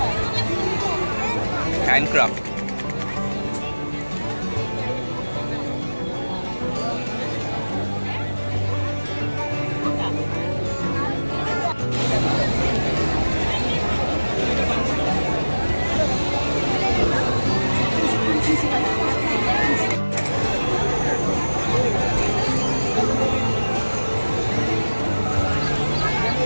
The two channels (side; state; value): both; inverted; correlation -1.00